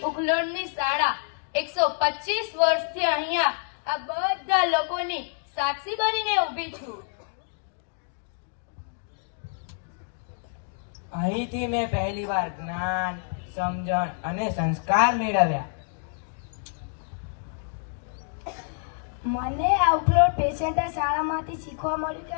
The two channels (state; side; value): silent; right; digital silence